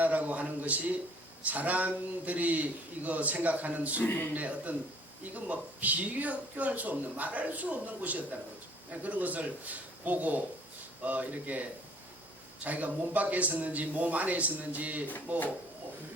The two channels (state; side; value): normal; both; correlation 0.56